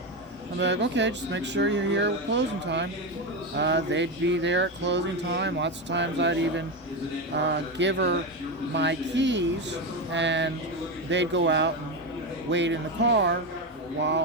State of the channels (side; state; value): both; normal; correlation 0.14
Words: I'm like, okay, just make sure you're here at closing time. They'd be there at closing time. Lots of times I'd even give her my keys, and they'd go out and wait in the car